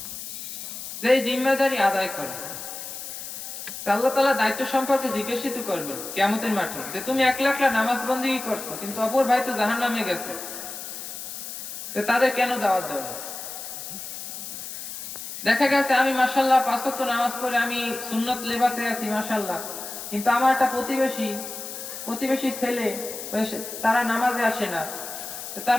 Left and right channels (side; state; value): left; noise; hiss, 9 dB below the sound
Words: যে জিম্মেদারি আদায় করে, আল্লাহ তাআলা দায়িত্ব সম্পর্কে জিজ্ঞাসিত করবেন কিয়ামতের মাঠে, যে তুমি একলা একলা নামাজ বন্দেগী করছো, কিন্তু অপর ভাই তো জাহান্নামে গেছে, তো তাদের কেন দাওয়াত দাও না? দেখা গেছে আমি মাশাআল্লাহ 5 ওয়াক্ত নামাজ পড়ে আমি সুন্নত লেবাসে আছি মাশাআল্লাহ, কিন্তু আমার একটা প্রতিবেশী ছেলে, তারা নামাজে আসে না,